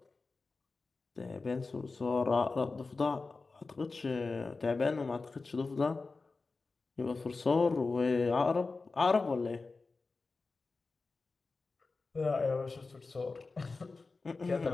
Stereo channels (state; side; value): quieter; right; 3.9 dB